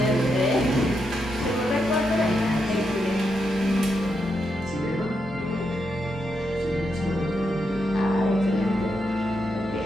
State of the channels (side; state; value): both; normal; correlation 0.83